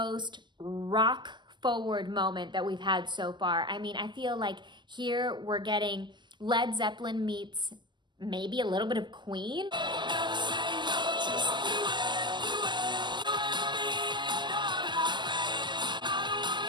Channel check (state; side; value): late; left; 0.22 ms